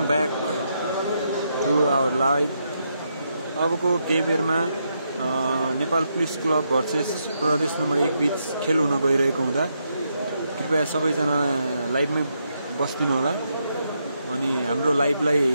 back to our live. अबको केही बेरमा Nepal police club versus Pradesh number 1 बीच खेल हुन गइरहेको हुँदा कृपया सबैजना लाइभमै बस्दिनु होला अनि हाम्रो लाइभलाई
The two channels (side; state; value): both; inverted; correlation -0.80